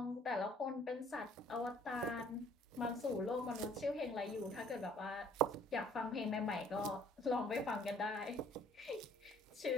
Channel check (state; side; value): normal; both; correlation 0.58